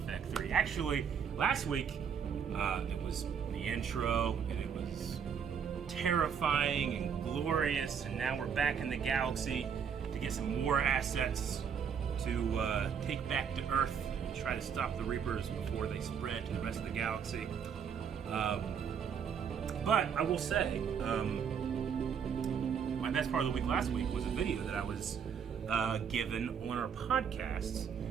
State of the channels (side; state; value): left; quieter; 7.2 dB